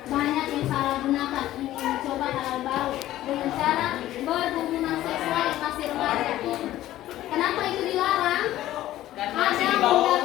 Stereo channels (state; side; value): quieter; right; 14.3 dB